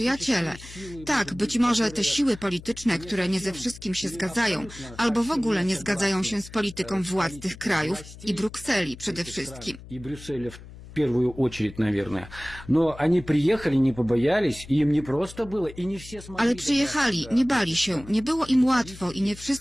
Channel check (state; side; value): noise; left; hum, 17 dB below the sound